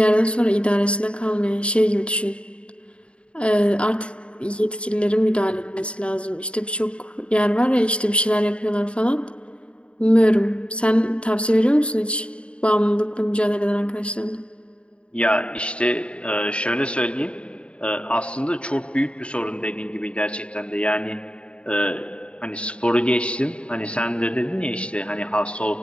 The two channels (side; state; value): right; late; 0.058 ms